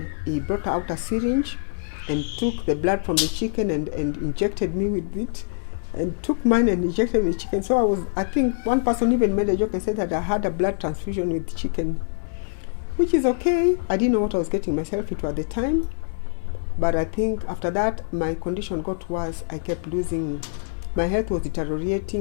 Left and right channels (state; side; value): silent; right; 59 dB below the other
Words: he brought out a syringe and took the blood from the chicken and injected me with it. And took mine and injected the chicken. So I think one person even made a joke and said that I had a blood transfusion with chicken. Which is okay. I didn't know what I was getting myself into at the time. But I think after that, my condition got worse. I kept losing. My health was